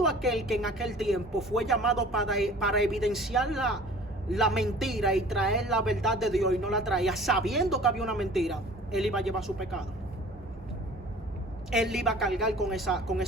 aquel que en aquel tiempo fue llamado para evidenciar la mentira y traer la verdad de Dios y no la traía, sabiendo que había una mentira, él iba a llevar su pecado. Él iba a cargar con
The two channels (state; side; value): normal; both; correlation 0.47